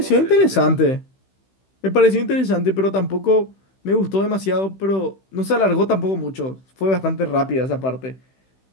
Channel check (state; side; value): late; right; 16 ms